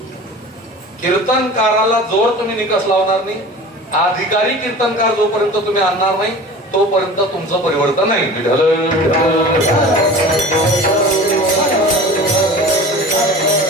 कीर्तनकाराला जोर तुम्ही निकष लावणार नाही, अधिकारी कीर्तनकार जोपर्यंत तुम्ही आणणार नाही तोपर्यंत तुमचं परिवर्तन नाही. विठ्ठल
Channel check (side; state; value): both; normal; correlation 0.38